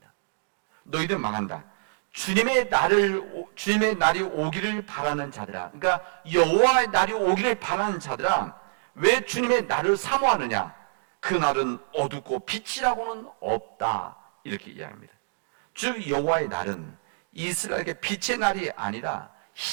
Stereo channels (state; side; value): silent; left; digital silence